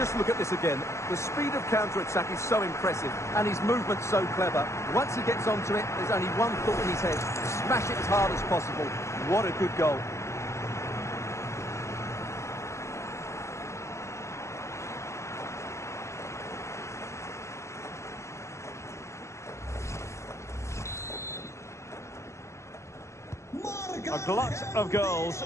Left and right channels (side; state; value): right; late; 0.13 ms